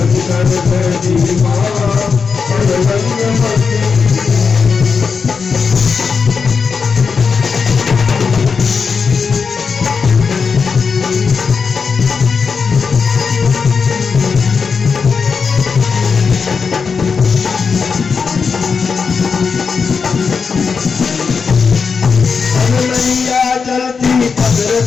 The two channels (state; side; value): quieter; right; 5.5 dB